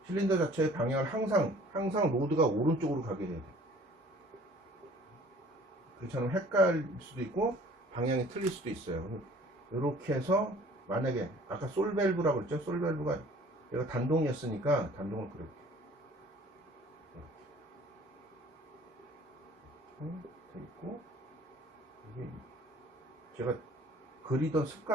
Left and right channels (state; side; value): normal; both; correlation 0.51